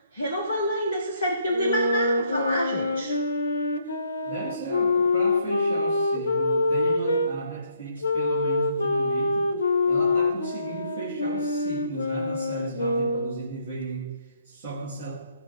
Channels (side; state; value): both; inverted; correlation -0.71